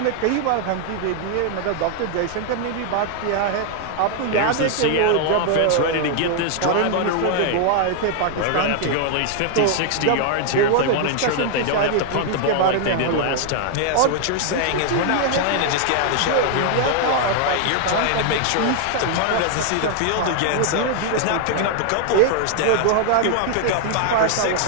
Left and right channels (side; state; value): both; different; correlation 0.00